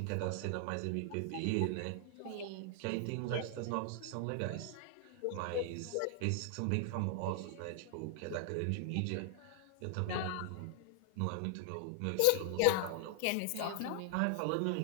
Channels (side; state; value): both; different; correlation 0.00